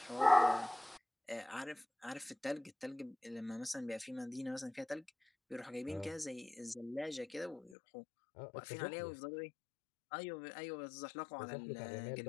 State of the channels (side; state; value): right; drops out; at 7.8 s